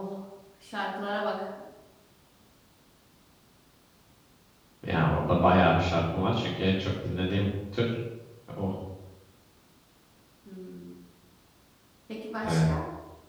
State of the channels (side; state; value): both; identical; correlation 1.00